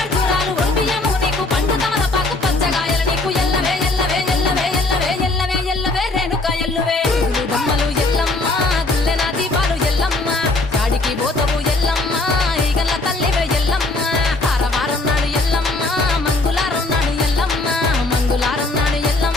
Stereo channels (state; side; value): quieter; right; 3.1 dB